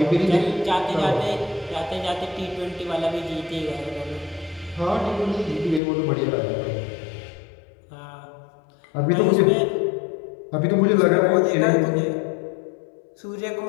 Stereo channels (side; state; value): right; drops out; at 5.8 s